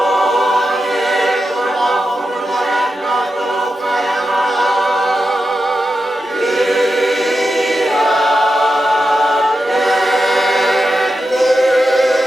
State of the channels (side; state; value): both; normal; correlation 0.89